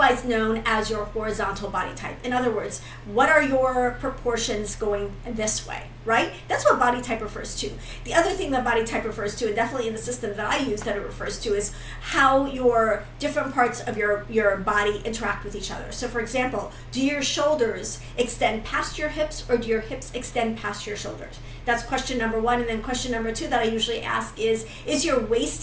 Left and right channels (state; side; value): identical; both; correlation 1.00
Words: known as your horizontal body type. In other words, what are your proportions going this way, right? That's what body type refers to. The other thing that body type refers to, and definitely in the system that I use that it refers to, is how your different parts of your body interact with each other. So for example, do your shoulders extend past your hips, or do your hips extend past your shoulders? That's question number 1. And then question number 2 that I usually ask is your